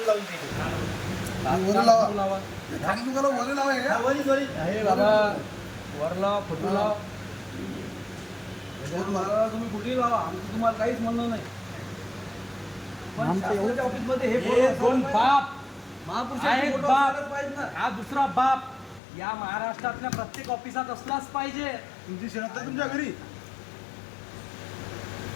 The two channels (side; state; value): right; drops out; at 19.0 s